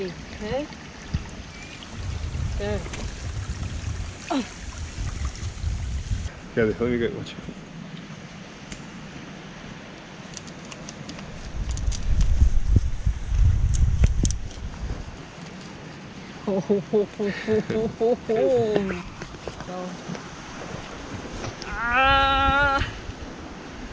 Okay. There. Oh. Okay, let me get watch. Ah,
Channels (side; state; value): both; identical; correlation 1.00